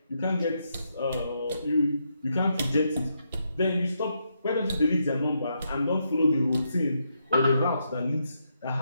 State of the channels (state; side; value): inverted; both; correlation -0.80